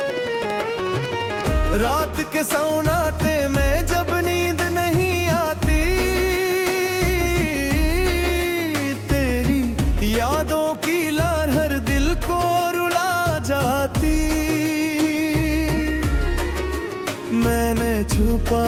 रात के सन्नाटे में जब नींद नहीं आती, तेरी यादों की लहर दिल को रुला जाती। मैंने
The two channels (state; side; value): identical; both; correlation 1.00